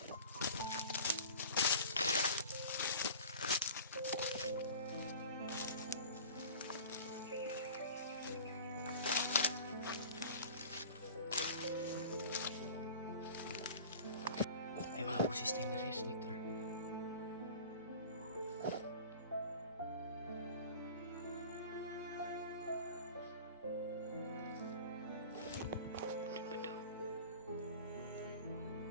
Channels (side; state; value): both; inverted; correlation -0.40